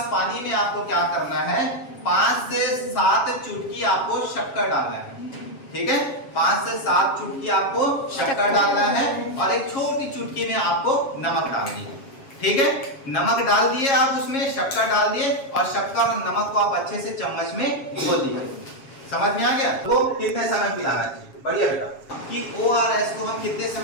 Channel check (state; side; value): late; right; 7.3 ms